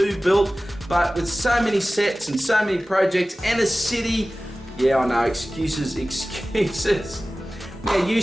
built, but with so many sets and so many projects and a city, yeah, I know, excuses. Now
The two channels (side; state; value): both; normal; correlation 0.97